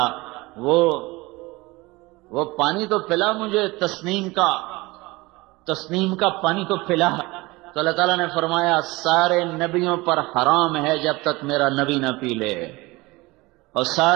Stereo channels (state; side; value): quieter; left; 22.2 dB